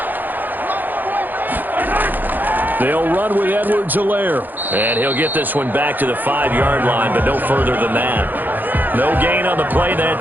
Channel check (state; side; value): late; left; 0.086 ms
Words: They'll run with Edwards-Helaire. And he'll get this one back to the 5-yard line, but no further than that. No gain on the play